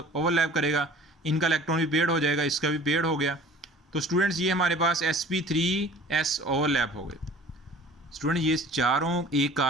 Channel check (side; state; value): both; normal; correlation 0.47